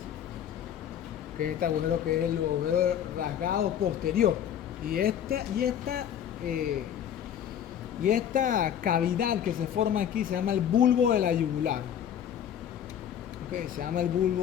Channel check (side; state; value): right; quieter; 9.6 dB